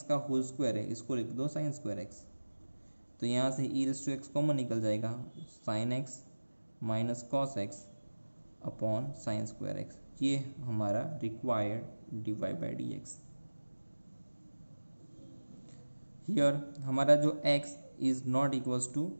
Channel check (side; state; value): both; inverted; correlation -1.00